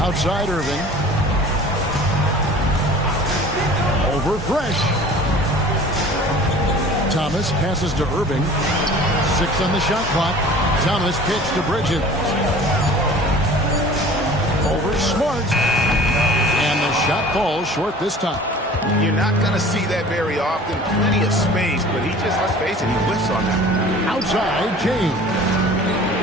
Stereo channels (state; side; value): normal; both; correlation 0.45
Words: Outside Irving. Over Fresh. Thomas passes to Irving. 6 on the shot clock. Thomas kicks to Bridges. Over Smart. And the shot falls short this time. You're not going to see that very often. Plenty of space, but he just, let's face it, he whiffs on that. Outside, James.